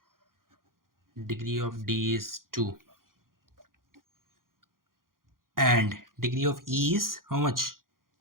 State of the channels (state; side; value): late; left; 0.91 ms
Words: Degree of D is 2. And degree of E is how much?